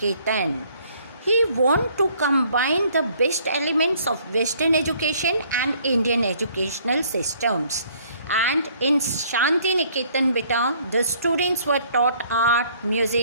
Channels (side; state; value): both; inverted; correlation -0.61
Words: He wanted to combine the best elements of Western education and Indian educational systems. And in Shanti Niketan, beta, the students were taught art,